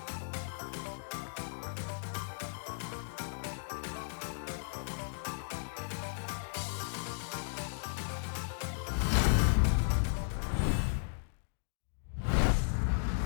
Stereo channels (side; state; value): right; silent; digital silence